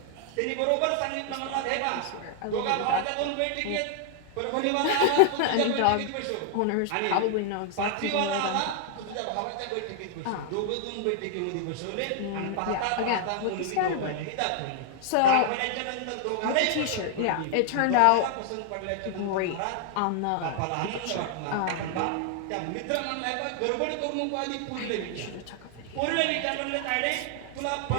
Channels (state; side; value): different; both; correlation 0.00